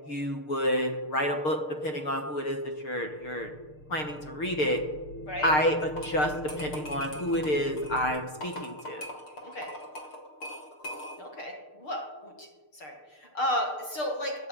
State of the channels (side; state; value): right; late; 6.6 ms